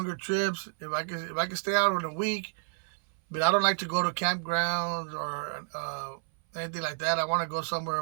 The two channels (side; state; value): left; silent; 58 dB below the other